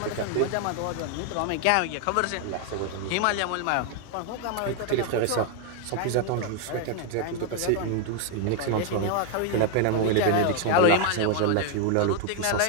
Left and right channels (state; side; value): different; both; correlation 0.01